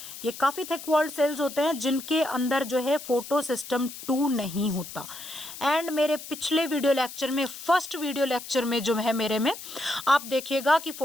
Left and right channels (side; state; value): left; noise; hiss, 12 dB below the sound